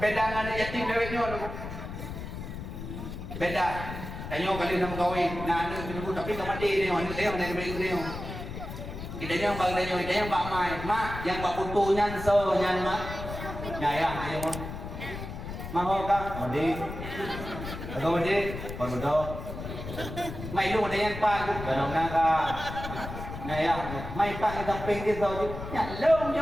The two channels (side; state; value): left; noise; rumble, 8 dB below the sound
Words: dengan yatim deweknya tu. Beda. Tanya kali nak kahwin, nak anak tu tapi tak mati dia, anak dia nak bagi dia. Kita yang bang dia, kita yang bang mai, mak yang bang putu nyan so nyan mak. Nyai ah, ayo mon. Mau ka? Mandi. Agak mandi, bodoh. Mai lu ada yang pak, kalau nak ka. Nyai ah, mai pak kita pergi tu. Ya, lu je